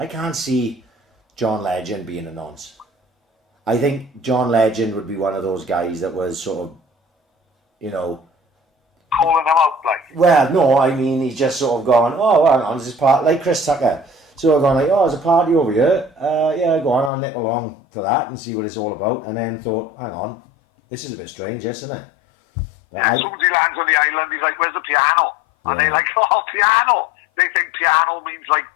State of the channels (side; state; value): right; drops out; at 17.1 s